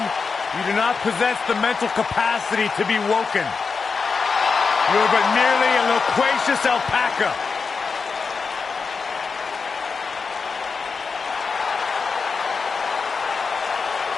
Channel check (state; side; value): quieter; right; 5.0 dB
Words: You do not possess the mental capacity to be woken. You are but merely a loquacious alpaca.